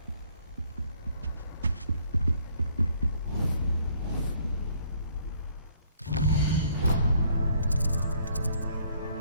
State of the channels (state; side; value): inverted; both; correlation -0.63